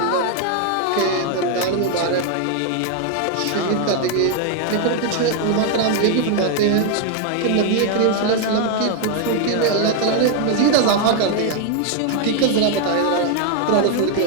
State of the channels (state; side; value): different; both; correlation 0.00